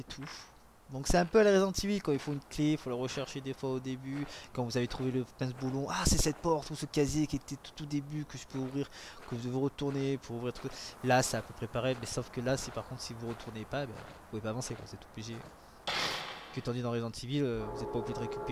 tout. Donc c'est un peu à la Resident Evil quand il faut une clé, il faut la rechercher des fois au début. Quand vous avez trouvé le pince-boulon, ah c'est cette porte ou ce casier qui était tout au début que je peux ouvrir, que vous devez retourner pour ouvrir tout. Là c'est à peu près pareil, mais sauf que là si par contre si vous retournez pas, ben, vous pouvez pas avancer quand c'est obligé. Que tandis dans Resident Evil, vous n'êtes pas obligé de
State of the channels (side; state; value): both; identical; correlation 1.00